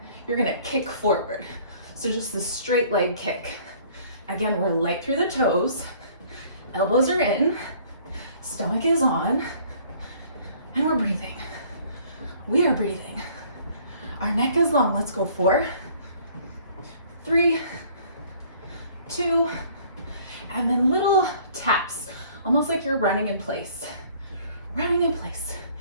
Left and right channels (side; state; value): both; inverted; correlation -0.56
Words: you're gonna kick forward. So just this straight leg kick. Again, we're light through the toes. Elbows are in, stomach is on, and we're breathing. We are breathing. Our neck is long. Let's go. 4, 3, 2, and then little taps, almost like you're running in place. Running in place.